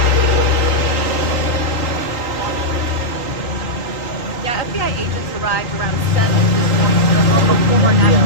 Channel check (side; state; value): right; late; 3.8 ms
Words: Yeah, FBI agents arrived around 7 this morning to the home of former